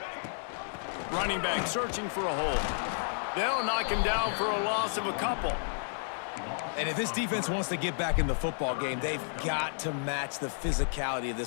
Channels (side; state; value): right; silent; digital silence